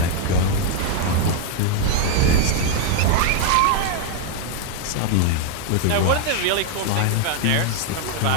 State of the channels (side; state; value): both; different; correlation 0.00